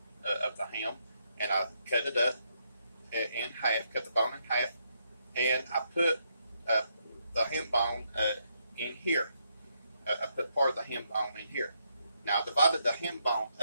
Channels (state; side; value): inverted; both; correlation -0.77